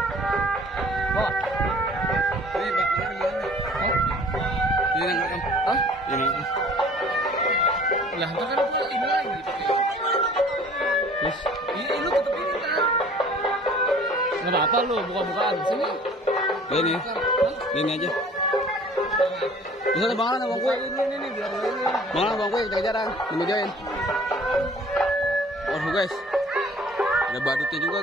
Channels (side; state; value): both; normal; correlation 0.50